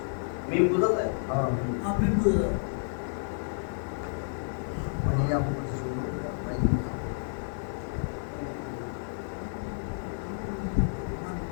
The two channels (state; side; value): silent; right; 58 dB below the other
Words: মিম বুঝা যায়? আপনি বুঝলেন মানে আপনি শুরু ভাই